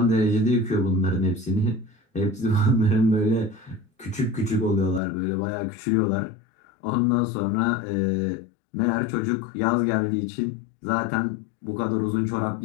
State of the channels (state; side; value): drops out; right; at 5.0 s